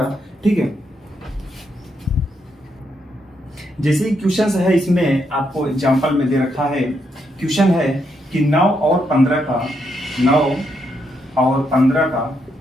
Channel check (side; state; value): both; normal; correlation 0.79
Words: ठीक है। जैसे क्वेश्चन है, इसमें आपको एग्जांपल में दे रखा है। क्वेश्चन है कि 9 और 15 का